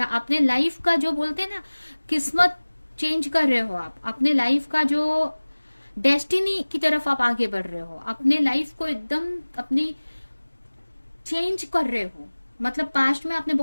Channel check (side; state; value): both; inverted; correlation -1.00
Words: अपने लाइफ का, जो बोलते हैं ना, किस्मत चेंज कर रहे हो। आप अपने लाइफ का जो डेस्टिनी की तरफ आप आगे बढ़ रहे हो, अपने लाइफ को एकदम अपनी चेंज कर रहे हो। मतलब पास्ट में आपने